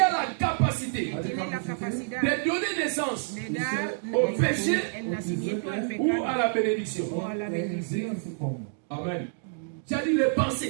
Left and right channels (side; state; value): left; silent; digital silence